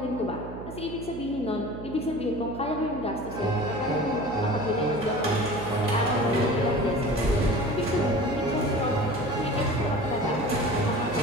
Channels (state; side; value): noise; right; hum, 11 dB below the sound